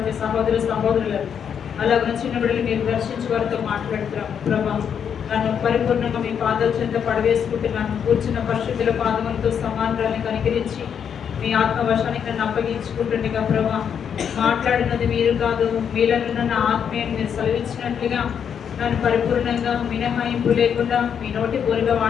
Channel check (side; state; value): right; quieter; 7.8 dB